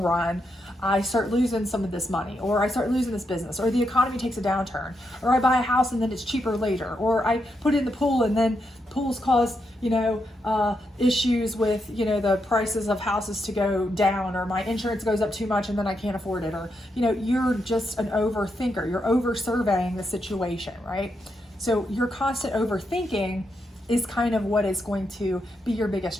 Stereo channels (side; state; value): both; normal; correlation 0.82